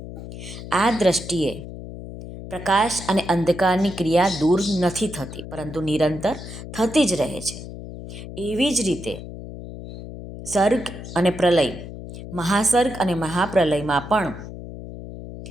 આ દ્રષ્ટિએ પ્રકાશ અને અંધકારની ક્રિયા દૂર નથી થતી, પરંતુ નિરંતર થતી જ રહે છે. એવી જ રીતે સર્ગ અને પ્રલય, મહાસર્ગ અને મહાપ્રલયમાં પણ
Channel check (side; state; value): left; noise; hum, 11 dB below the sound